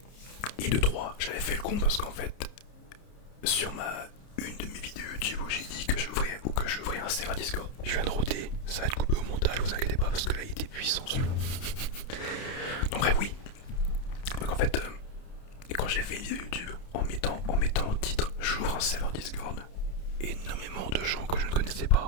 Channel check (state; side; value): late; right; 30 ms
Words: Et de 3, j'avais fait le con parce qu'en fait, sur une de mes vidéos YouTube où j'ai dit que j'ouvrais un serveur Discord, je viens de roter, ça va être coupé au montage, vous inquiétez pas parce que là il était puissant celui-là. Donc bref, oui. Donc en fait, quand j'ai fait une vidéo YouTube en mettant en titre j'ouvre un serveur Discord, énormément de gens que je ne connaissais